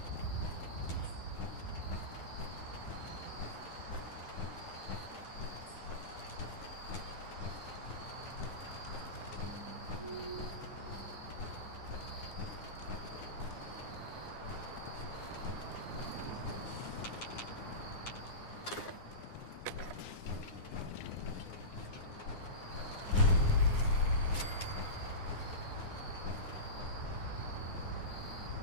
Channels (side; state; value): right; late; 9.6 ms